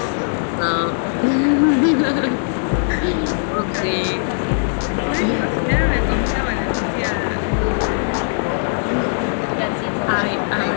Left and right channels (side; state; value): right; silent; digital silence